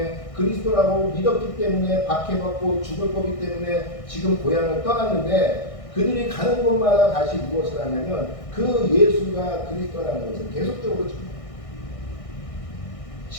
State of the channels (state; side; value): late; right; 1.6 ms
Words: 그리스도라고 믿었기 때문에 박해받고 죽을 거기 때문에 지금 고향을 떠났는데, 그들이 가는 곳마다 다시 무엇을 하냐면 그 예수가 그리스도라는 것을 계속적으로 줍니다.